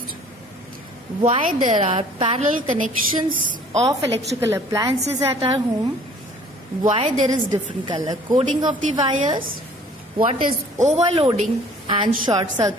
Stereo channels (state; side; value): normal; both; correlation 0.53